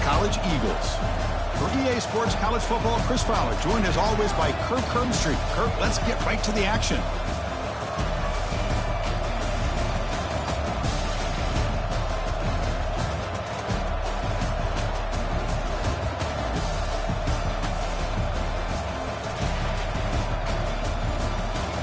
College Eagles. For EA Sports College Football, Chris Fowler, joined as always by Kirk Hermstreet. Kirk, let's get right to the action.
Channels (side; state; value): both; identical; correlation 1.00